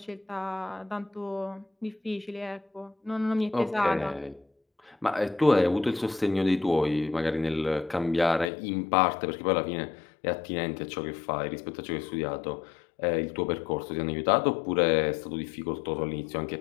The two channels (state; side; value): drops out; right; at 8.5 s